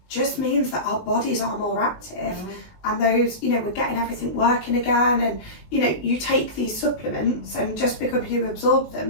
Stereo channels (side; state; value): right; late; 20 ms